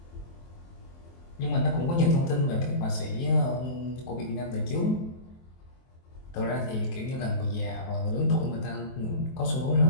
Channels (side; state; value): right; late; 23 ms